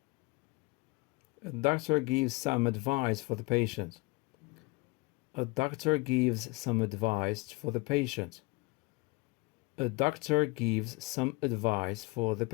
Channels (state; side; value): quieter; right; 25.8 dB